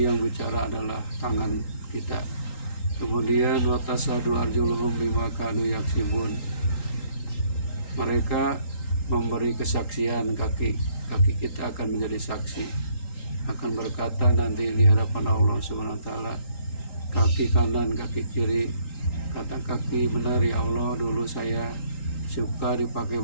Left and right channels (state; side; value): late; right; 3.8 ms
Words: yang bicara adalah tangan kita. Kemudian watasadu arjuluhum bima kanu yaksibun, mereka memberi kesaksian, kaki kita akan menjadi saksi, akan berkata nanti di hadapan Allah SWT, kaki kanan, kaki kiri, kata kaki, benar ya Allah, dulu saya suka dipakai